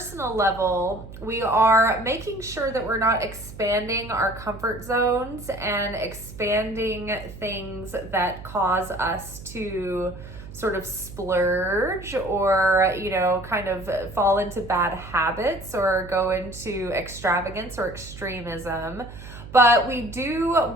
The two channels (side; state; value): right; noise; hum, 14 dB below the sound